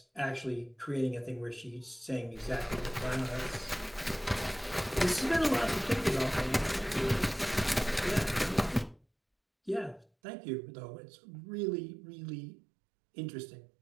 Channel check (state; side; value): drops out; left; at 10.1 s